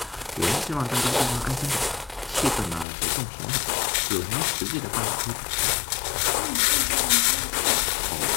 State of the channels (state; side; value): drops out; right; at 2.9 s